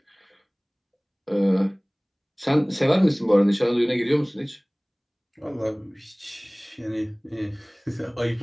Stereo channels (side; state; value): both; identical; correlation 1.00